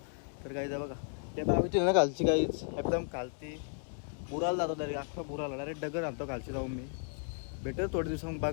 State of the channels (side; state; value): right; silent; 55 dB below the other